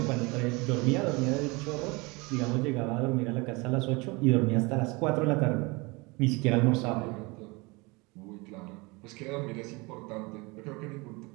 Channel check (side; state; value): left; quieter; 26.0 dB